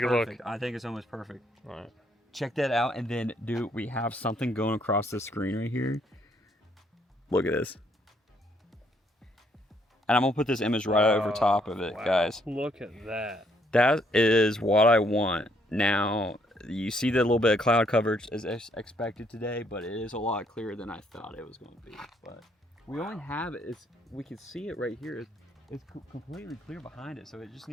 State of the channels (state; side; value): normal; both; correlation 0.70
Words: a look. I think it's almost perfect. All right. Check that out, and then, dude, we have something going across the screen right here. Look at this. And I'm going to put this image right over top of it, guys. Look at that. That is what I want. Now, you see the little bit of cloud coverage is expected today, but it is a lot clearer than I thought it was going to be. But we only have it. We can see it right here. It's completely clear behind it, so it just